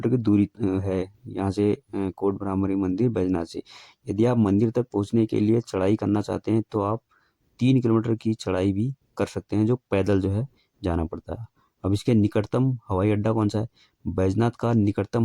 की दूरी है यहाँ से कोट भ्रामरी मंदिर बैजनाथ से। यदि आप मंदिर तक पहुँचने के लिए चढ़ाई करना चाहते हैं तो आप 3 किलोमीटर की चढ़ाई भी कर सकते हैं, जो पैदल जो है जाना पड़ता है। अब इसके निकटतम हवाई अड्डा कौन सा है? बैजनाथ का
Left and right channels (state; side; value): identical; both; correlation 1.00